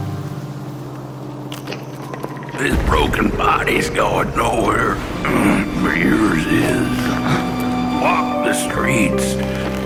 This broken body's going nowhere, but yours is. Walk the streets,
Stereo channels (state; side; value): identical; both; correlation 1.00